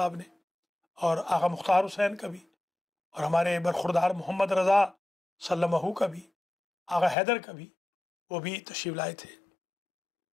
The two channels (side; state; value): right; drops out; at 7.2 s